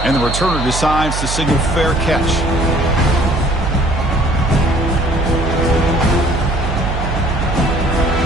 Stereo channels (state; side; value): noise; right; hum, 4 dB below the sound